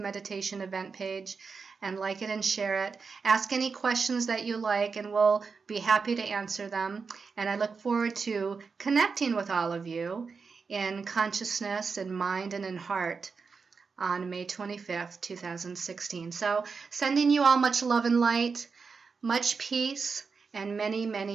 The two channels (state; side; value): quieter; left; 5.1 dB